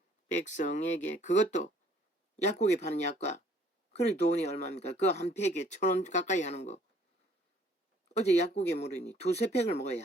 백성에게, 그것도 약국에 파는 약과, 그래 돈이 얼마입니까? 그거 한 팩에 1,000원 가까이 하는 거 어제 약국에 물으니 2~3팩을 먹어야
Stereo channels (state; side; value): normal; both; correlation 0.59